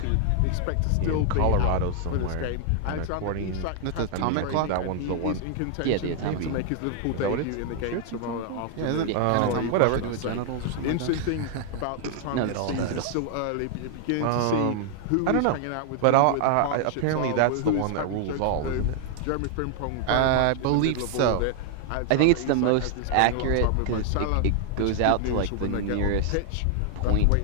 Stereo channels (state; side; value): different; both; correlation 0.00